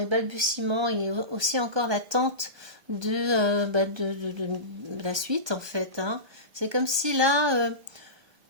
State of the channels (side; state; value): left; late; 1.2 ms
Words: balbutiements, il y a aussi encore l'attente de la suite en fait, hein. C'est comme si là,